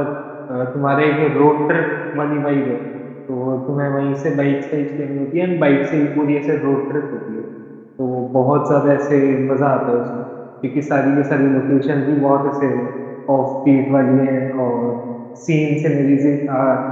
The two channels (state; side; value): identical; both; correlation 1.00